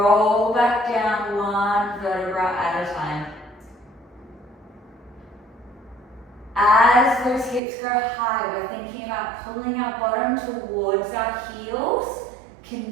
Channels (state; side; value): drops out; left; at 7.6 s